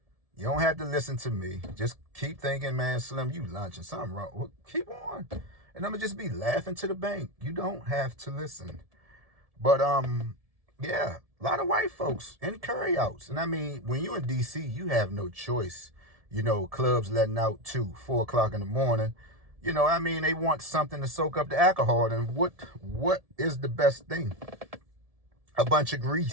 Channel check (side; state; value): left; late; 1.7 ms